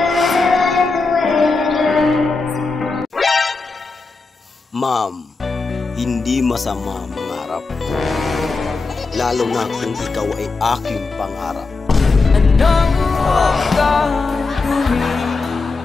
Ma'am, hindi masama mangarap. Lalo na kung ikaw ay aking pangarap. anong gagawin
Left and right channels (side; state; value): right; quieter; 4.0 dB